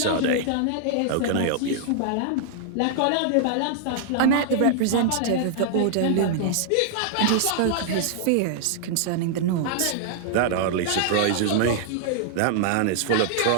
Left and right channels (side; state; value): both; different; correlation -0.01